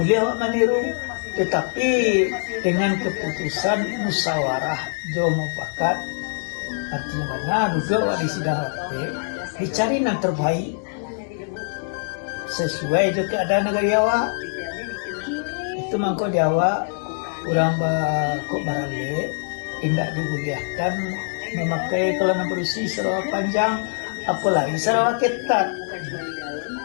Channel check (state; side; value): silent; right; digital silence